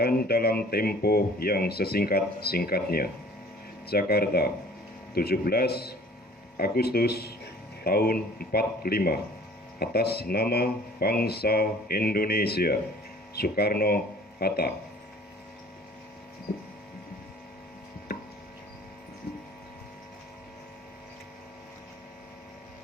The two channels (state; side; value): normal; both; correlation 0.51